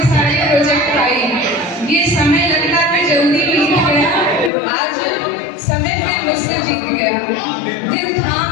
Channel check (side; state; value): right; drops out; at 4.5 s